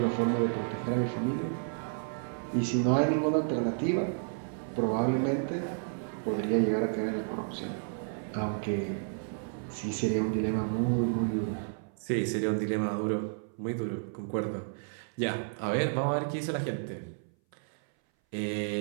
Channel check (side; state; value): left; silent; 57 dB below the other